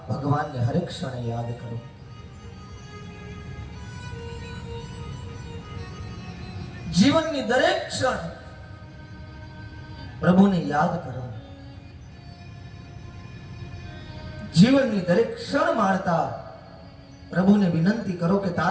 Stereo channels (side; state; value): both; identical; correlation 1.00